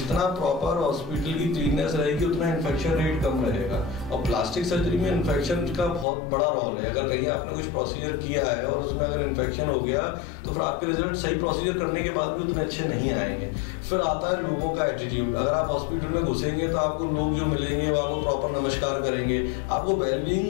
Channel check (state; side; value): drops out; right; at 6.1 s